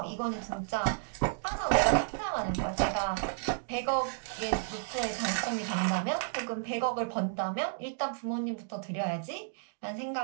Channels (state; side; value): silent; left; digital silence